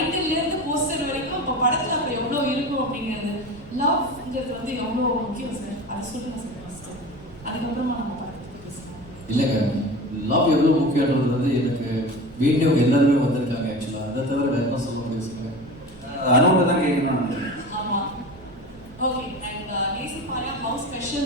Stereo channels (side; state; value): right; noise; rumble, 20 dB below the sound